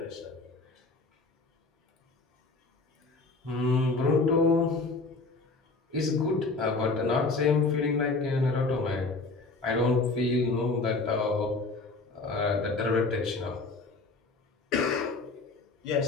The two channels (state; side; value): quieter; right; 3.6 dB